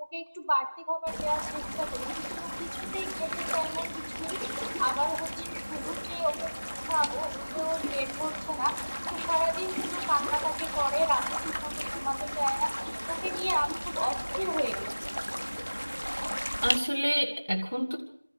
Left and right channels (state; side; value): inverted; both; correlation -1.00